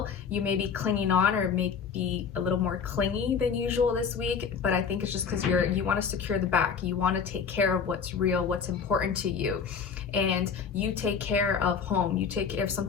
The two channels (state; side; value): quieter; right; 6.4 dB